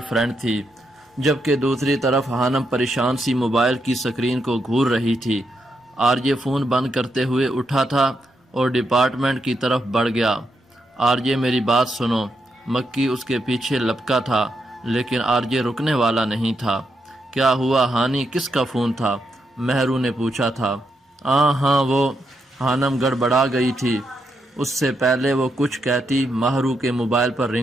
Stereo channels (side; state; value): both; normal; correlation 0.82